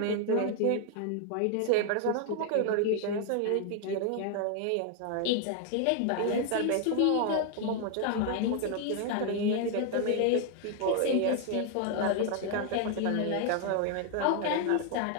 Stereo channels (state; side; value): different; both; correlation 0.00